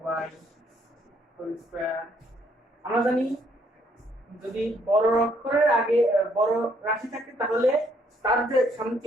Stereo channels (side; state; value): both; normal; correlation 0.68